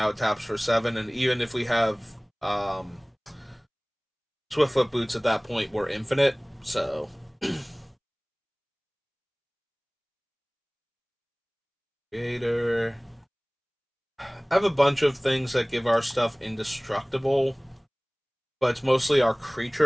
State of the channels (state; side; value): identical; both; correlation 1.00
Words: it taps for 7, and even if we have Swiftfoot boots at that point, we're infinite, so Creator. I have a bunch of things that give our stuff indestructible, but it's mostly our